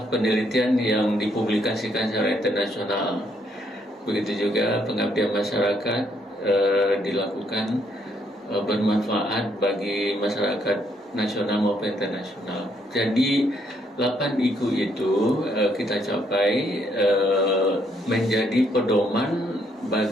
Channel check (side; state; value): both; normal; correlation 0.71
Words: penelitian yang dipublikasikan secara internasional, begitu juga pengabdian masyarakat dilakukan bermanfaat bagi masyarakat nasional maupun internasional. Jadi 8 IQ itu kita capai menjadi pedoman